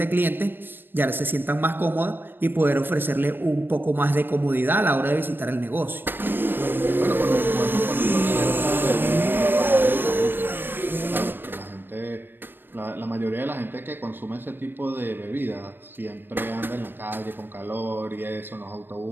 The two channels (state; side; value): late; left; 0.096 ms